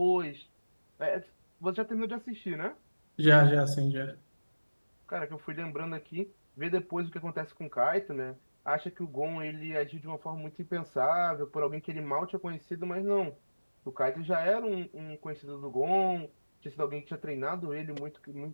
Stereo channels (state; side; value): inverted; both; correlation -1.00